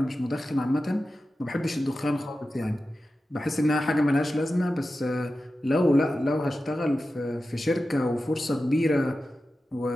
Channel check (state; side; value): normal; both; correlation 0.93